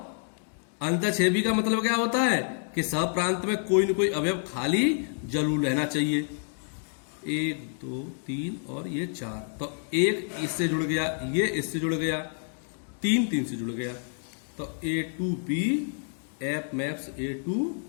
अंतःक्षेपी का मतलब क्या होता है कि सहप्रांत में कोई न कोई अवयव खाली जरूर रहना चाहिए। 1 2 3 और ये 4, तो 1 इससे जुड़ गया, ये इससे जुड़ गया, 3 3 से जुड़ गया, तो A to B F maps A to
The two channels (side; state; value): right; silent; 59 dB below the other